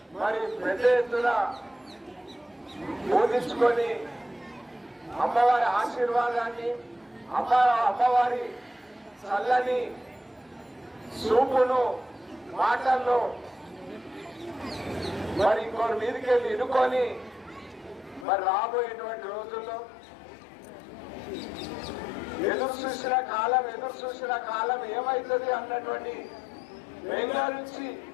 మరి పెద్ద ఎత్తున బోధించుకొని అమ్మవారి ఆశీర్వాదాన్ని అమ్మవారి చల్లని చూపును మాటల్లో మరి ఇంకోటి మీదకి వెళ్ళి ఇనుకొని మరి రాబోయేటువంటి రోజుల్లో ఎదురు చూసిన కాలం ఏమవుతుంది అన్నటువంటి బెంగళూరు నుంచి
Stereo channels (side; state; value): right; drops out; at 18.2 s